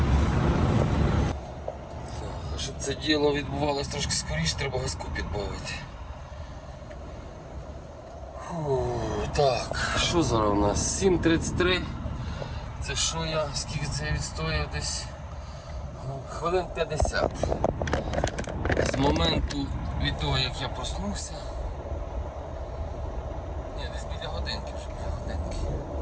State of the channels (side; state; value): both; identical; correlation 1.00